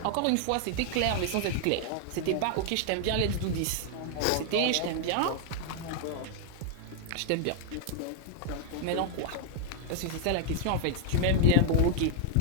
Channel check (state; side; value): different; both; correlation 0.00